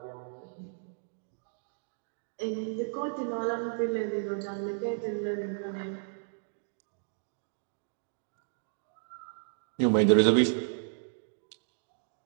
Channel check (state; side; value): silent; left; digital silence